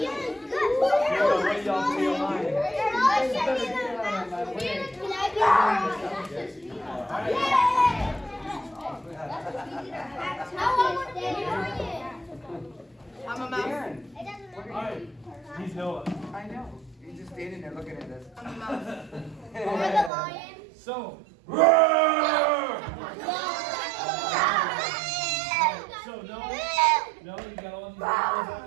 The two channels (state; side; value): drops out; left; at 20.1 s